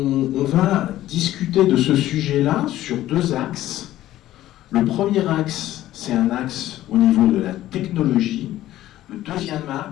va discuter de ce sujet-là sur 2 axes. Le premier axe, c'est un axe au niveau de la technologie. Le deuxième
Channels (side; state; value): right; quieter; 14.2 dB